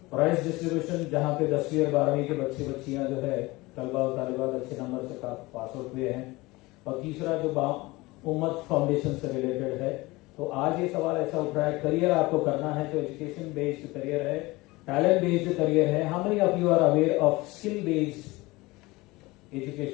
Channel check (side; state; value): right; quieter; 21.6 dB